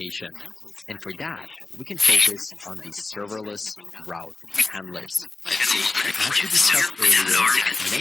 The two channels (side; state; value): right; quieter; 3.4 dB